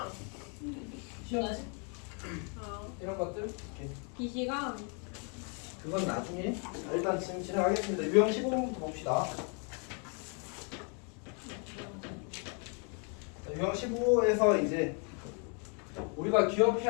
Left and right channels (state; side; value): quieter; right; 38.2 dB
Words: 시험 이런 것들 이렇게. 비시간 그건 나중에. 자, 일단 지금 진행하겠습니다. 유형 15번부터 봅시다. 자, 유형 15에서 이제 우리가